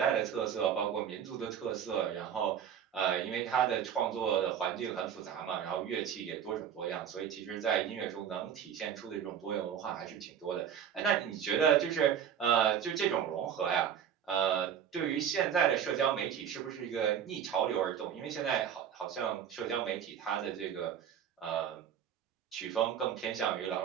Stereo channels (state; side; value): quieter; left; 8.7 dB